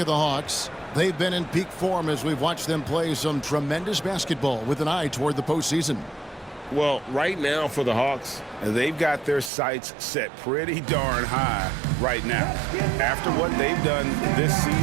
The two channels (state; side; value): drops out; left; at 9.5 s